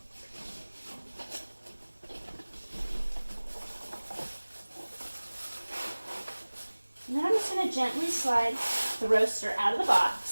And then I'm just going to gently slide the roaster out of the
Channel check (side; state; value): both; inverted; correlation -1.00